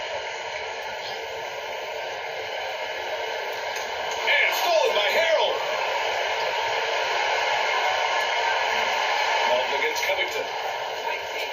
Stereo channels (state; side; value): identical; both; correlation 1.00